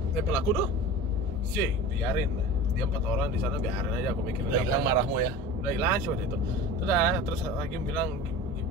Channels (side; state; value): both; normal; correlation 0.35